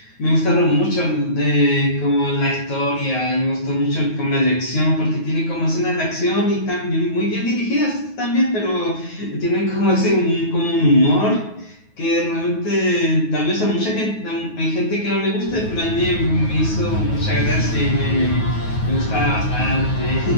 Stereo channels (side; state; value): right; late; 9.3 ms